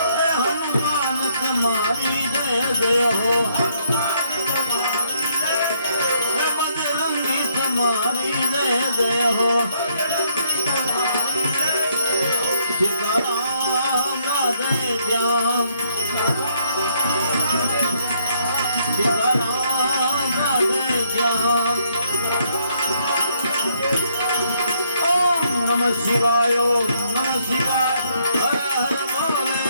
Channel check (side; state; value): both; inverted; correlation -0.70